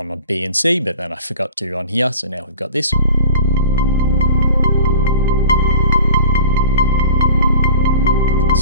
B and C, but then I forgot to on here. So now we've got this.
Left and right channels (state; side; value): inverted; both; correlation -0.41